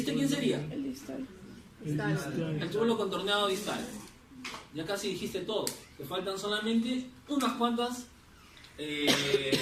quién sería? El distal. El túbulo contorneado distal. Ya casi dijiste todo. Te faltan solamente unas cuantas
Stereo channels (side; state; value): both; identical; correlation 1.00